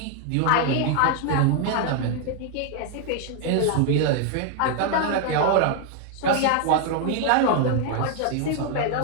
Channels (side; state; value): both; different; correlation 0.00